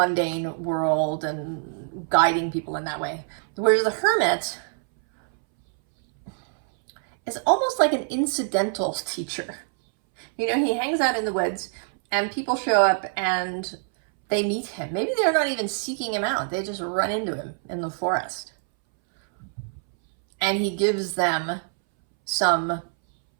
world and guiding people in that way. Whereas the Hermit is almost like an incidental teacher. You know, he hangs out in the woods and people show up and they meet him. Maybe they're not even seeking him out. They just run into him in the forest. And he gives them some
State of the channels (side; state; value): left; silent; 62 dB below the other